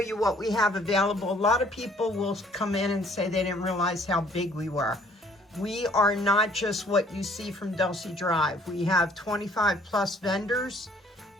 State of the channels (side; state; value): both; normal; correlation 0.59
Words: what we have available. A lot of people will come in and say they didn't realize how big we were. We are not just what you see from Delsea Drive. We have 25 plus vendors.